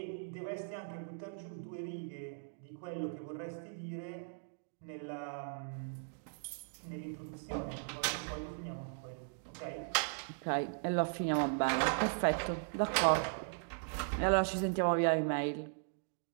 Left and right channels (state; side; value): silent; left; digital silence